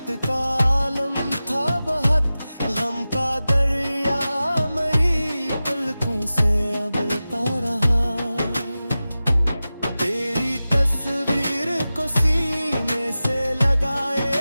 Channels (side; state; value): both; inverted; correlation -0.95